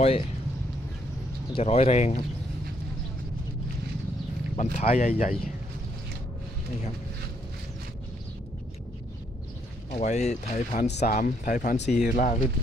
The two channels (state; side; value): normal; both; correlation 0.71